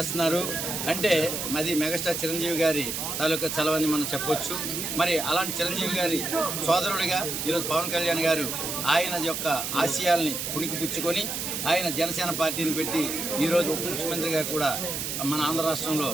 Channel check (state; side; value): noise; right; hiss, 3 dB below the sound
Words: అంటే అది మెగాస్టార్ చిరంజీవి గారి తాలూకా చలవని మనం చెప్పొచ్చు. మరి అలాంటి చిరంజీవి గారి సోదరుడిగా ఈరోజు పవన్ కళ్యాణ్ గారు ఆయన యొక్క ఆశయాల్ని పుణికిపుచ్చుకొని ఆయన జనసేన పార్టీని పెట్టి ఈరోజు ఉప ముఖ్యమంత్రిగా కూడా మన ఆంధ్ర రాష్ట్రంలో